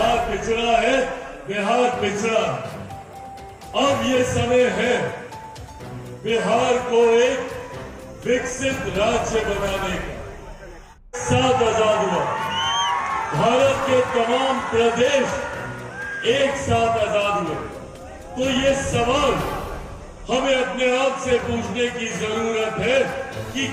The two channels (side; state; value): both; identical; correlation 1.00